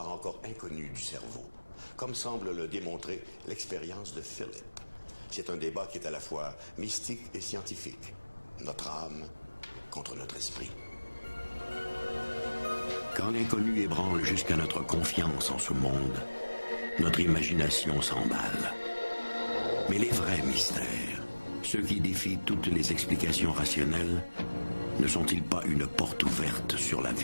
encore inconnu du cerveau, comme semble le démontrer l'expérience de Philip. C'est un débat qui est à la fois mystique et scientifique. Notre âme contre notre esprit. Quand l'inconnu ébranle jusqu'à notre confiance en ce monde, notre imagination s'emballe. Mais les vrais mystères, ceux qui défient toutes les explications rationnelles, ne sont-ils pas une porte ouverte sur la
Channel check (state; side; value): inverted; both; correlation -1.00